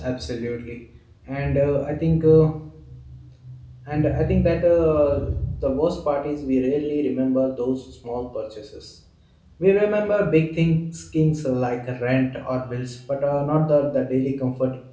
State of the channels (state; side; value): identical; both; correlation 1.00